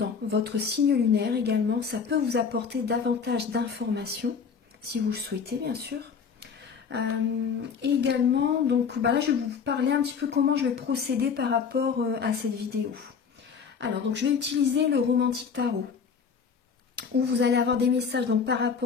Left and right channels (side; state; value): right; quieter; 6.2 dB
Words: votre signe lunaire également. Ça peut vous apporter davantage d'informations, si vous le souhaitez bien sûr. Et également, donc là je vais vous parler un petit peu comment je vais procéder par rapport à cette vidéo. Alors donc je vais utiliser le Romantique Tarot, où vous allez avoir des messages donc par